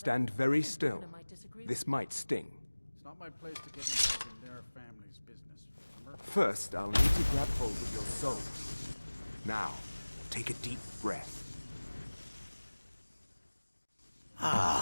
very still. This might sting. It's not my place to get involved in their family's business, remember? First, I'll need to grab hold of your soul. Now, take a deep breath.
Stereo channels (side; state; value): both; inverted; correlation -1.00